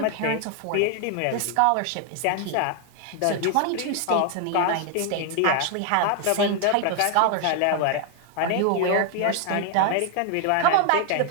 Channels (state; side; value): different; both; correlation 0.00